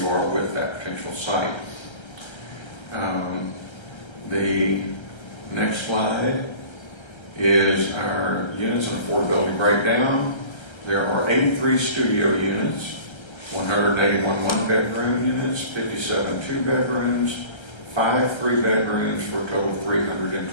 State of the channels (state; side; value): late; right; 1.3 ms